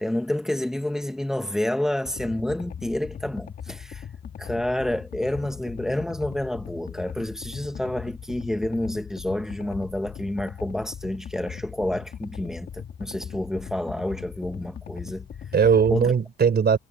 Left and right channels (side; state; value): both; normal; correlation 0.69